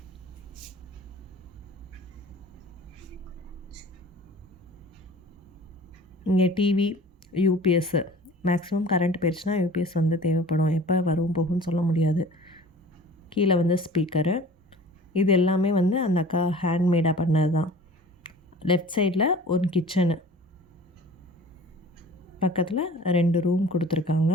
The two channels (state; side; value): normal; both; correlation 0.44